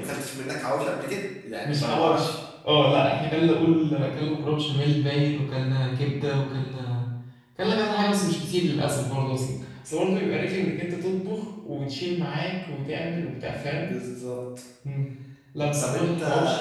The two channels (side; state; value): both; identical; correlation 1.00